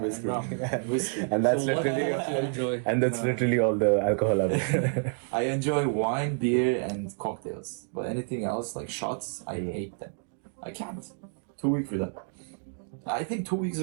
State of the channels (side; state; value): left; silent; 59 dB below the other